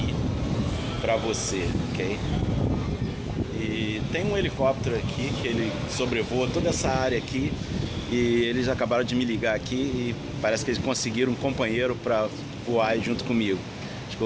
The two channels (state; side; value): identical; both; correlation 1.00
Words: pra você, ok? E tem um helicóptero aqui que ele sobrevoa toda essa área aqui e eles acabaram de me ligar aqui e parece que eles conseguiram um companheiro pra voar junto comigo. Acho que